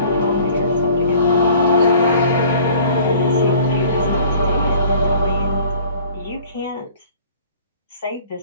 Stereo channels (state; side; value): inverted; both; correlation -0.51